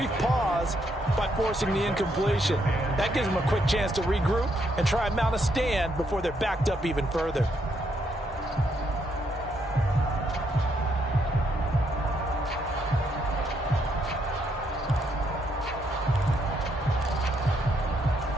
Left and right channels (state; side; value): normal; both; correlation 0.75